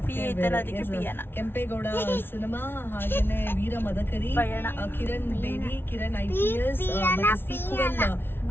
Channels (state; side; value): late; right; 0.11 ms